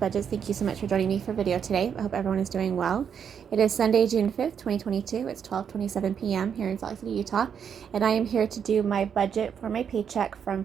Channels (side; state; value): left; quieter; 7.6 dB